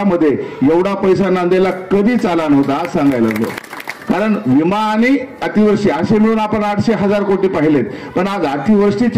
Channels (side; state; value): both; identical; correlation 1.00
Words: एवढा पैसा नांदेडला कधीच आला नव्हता, आज सांगायला लागलो. कारण विमा आणि अतिवृष्टी असे मिळून आपण 800,000 कोटी पाहिलेत, पण आज